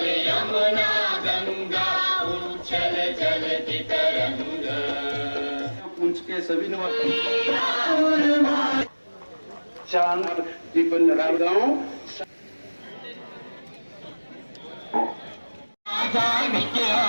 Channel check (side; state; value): both; inverted; correlation -1.00